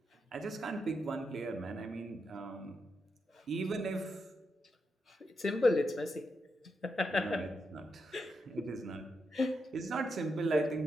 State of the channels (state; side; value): normal; both; correlation 0.84